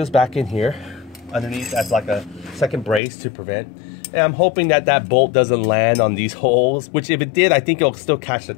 back in here underneath as like a second brace to prevent. And I'm hoping that that bolt doesn't land on these holes, which if it did, I think it'll still catch the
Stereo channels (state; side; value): drops out; right; at 3.0 s